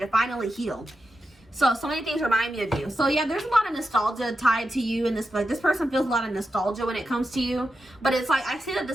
finally heal. So many things remind me of you. So yeah, there's a lot of nostalgia tied to you, and this person feels a lot of nostalgia when it comes to you. But it's like, I see that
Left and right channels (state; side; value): normal; both; correlation 0.89